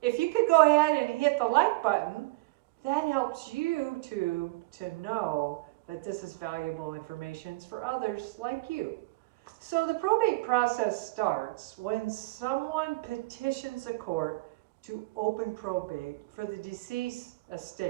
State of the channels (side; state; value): left; quieter; 23.0 dB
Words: If you could go ahead and hit the like button, that helps you to know that this is valuable information for others like you. So the probate process starts when someone petitions a court to open probate for the deceased